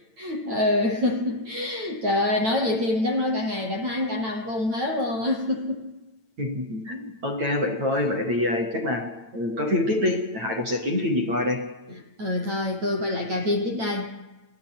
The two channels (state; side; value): late; left; 9.0 ms